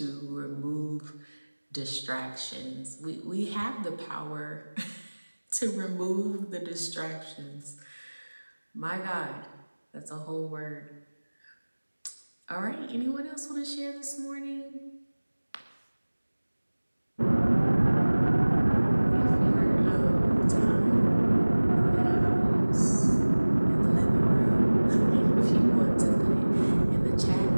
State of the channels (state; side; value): inverted; both; correlation -1.00